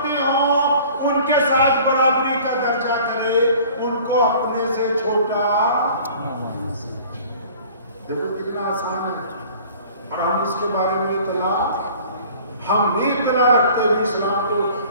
ہوں ان کے ساتھ برابری کا درجہ کرے، ان کو اپنے سے چھوٹا. دیکھو کتنا آسان ہے. اور ہم اس کے بارے میں ہم نہیں اطلاع رکھتے بھی. اسلام کو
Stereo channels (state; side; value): inverted; both; correlation -0.49